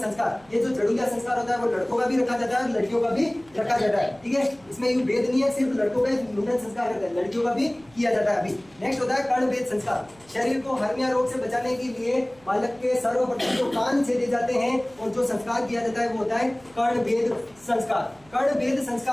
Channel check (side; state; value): right; noise; hum, 28 dB below the sound